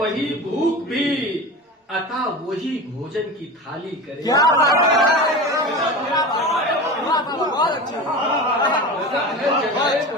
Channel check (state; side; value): normal; both; correlation 0.29